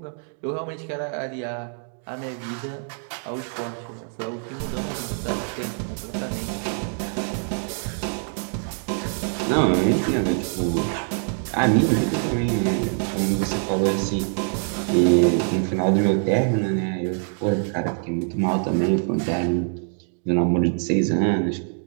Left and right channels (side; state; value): left; silent; 55 dB below the other